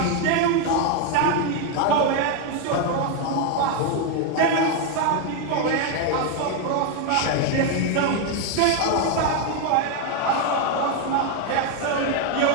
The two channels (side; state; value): both; different; correlation 0.01